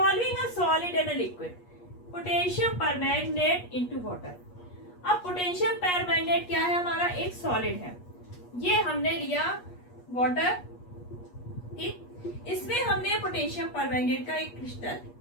a solid and a liquid, potassium permanganate into water. अब पोटेशियम परमैंगनेट क्या है, हमारा एक सॉलिड है, ये हमने लिया वाटर, ठीक। इसमें हमने पोटेशियम परमैंगनेट का एक क्रिस्टल,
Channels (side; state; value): right; late; 8.4 ms